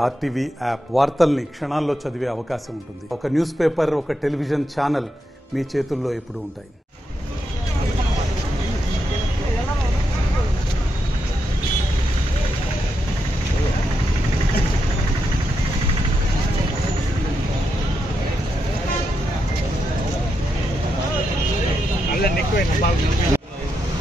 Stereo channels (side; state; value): both; normal; correlation 0.84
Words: ఆర్టీవీ యాప్ వార్తల్ని క్షణాల్లో చదివే అవకాశం ఉంటుంది. ఒక న్యూస్ పేపర్, ఒక టెలివిజన్ ఛానల్ మీ చేతుల్లో ఎప్పుడూ ఉంటాయి.